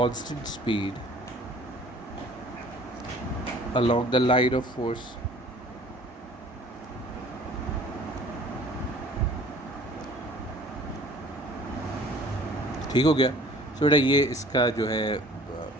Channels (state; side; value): normal; both; correlation 0.51